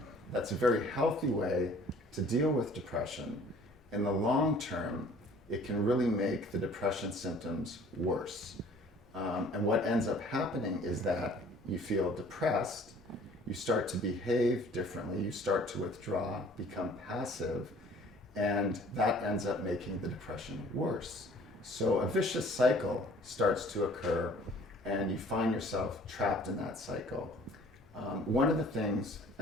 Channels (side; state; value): both; normal; correlation 0.52